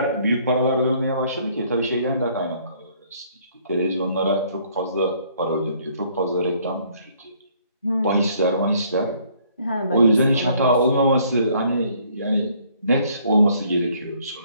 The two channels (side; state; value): both; inverted; correlation -0.63